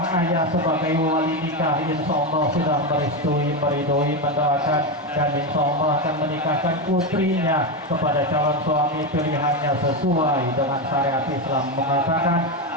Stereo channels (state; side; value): normal; both; correlation 0.12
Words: ayah sebagai wali nikah insya Allah sudah merestui, meridoi, mendoakan, dan insya Allah akan menikahkan putrinya kepada calon suami pilihannya sesuai dengan syariat Islam. Mengatakan